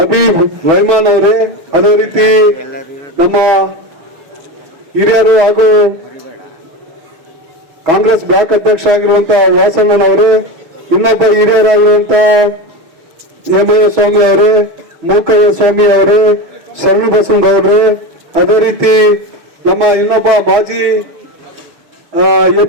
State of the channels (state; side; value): late; left; 6.2 ms